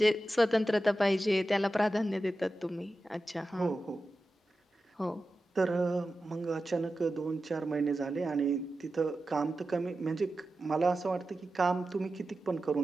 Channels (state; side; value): normal; both; correlation 0.93